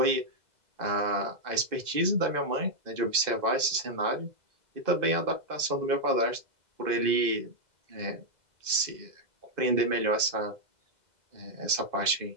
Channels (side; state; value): left; late; 2.0 ms